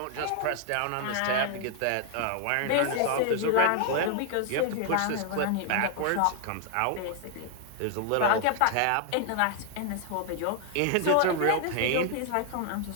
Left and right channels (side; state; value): both; different; correlation 0.00